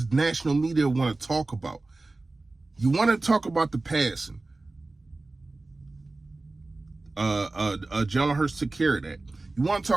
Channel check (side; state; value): left; quieter; 3.2 dB